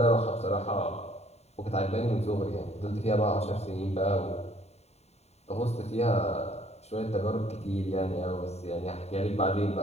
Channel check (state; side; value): late; right; 0.31 ms